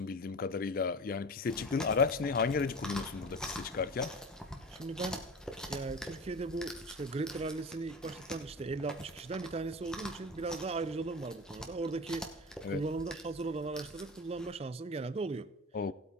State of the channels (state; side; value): normal; both; correlation 0.32